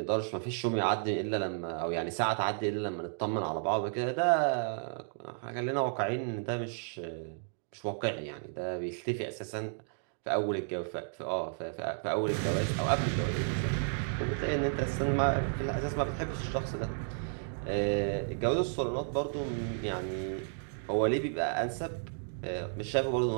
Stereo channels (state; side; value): silent; left; digital silence